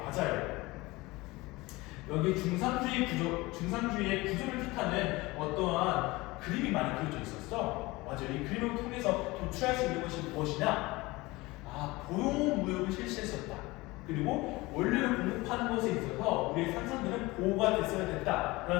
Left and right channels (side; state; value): right; quieter; 21.6 dB